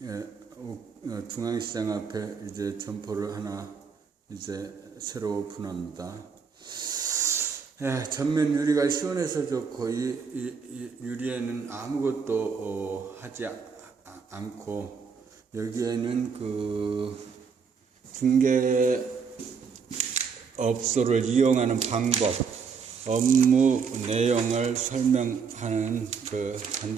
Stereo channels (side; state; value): left; quieter; 5.9 dB